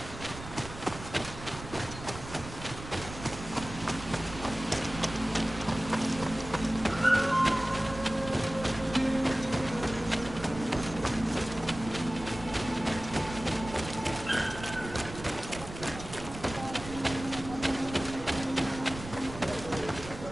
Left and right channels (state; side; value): noise; right; rumble, 12 dB below the sound